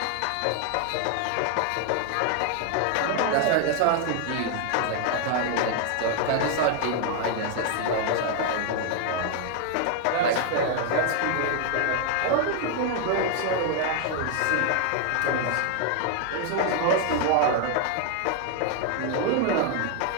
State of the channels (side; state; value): both; different; correlation 0.00